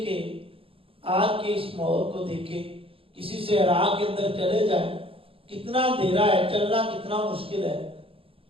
کہ آج کے اس ماحول کو دیکھیں، کسی سے عراق کے اندر چلے جائیں کتنا اندھیرا ہے، چلنا کتنا مشکل ہے،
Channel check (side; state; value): left; late; 0.27 ms